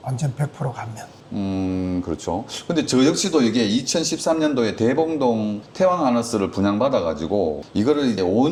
완전 100% 감면. 그렇죠. 근데 저 역시도 이게 2013년도에 대봉동 태왕아너스를 분양받아가지고 이거를 이제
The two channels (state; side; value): identical; both; correlation 1.00